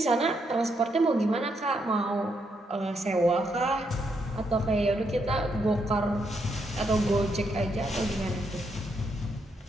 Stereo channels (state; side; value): normal; both; correlation 0.78